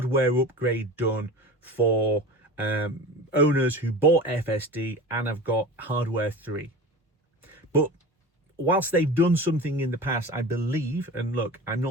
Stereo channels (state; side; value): normal; both; correlation 0.33